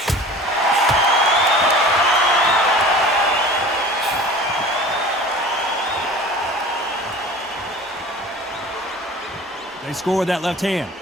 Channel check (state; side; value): normal; both; correlation 0.41